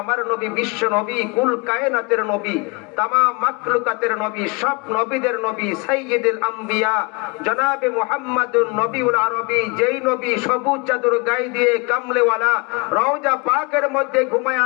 আমার নবী, বিশ্ব নবী, কুল কায়নাতের নবী, তামাম মাখলুকাতের নবী, সব নবীদের নবী, সাইয়্যিদুল আম্বিয়া জনাবে মুহাম্মাদুন নবীউল আরবী, যেই নবী সবুজ চাদর গায়ে দিয়ে কামলেওয়ালা রওজা পাকের মধ্যে ঘুমায়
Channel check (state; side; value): quieter; right; 29.3 dB